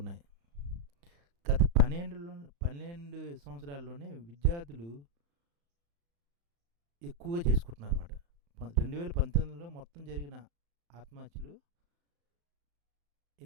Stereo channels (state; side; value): late; left; 35 ms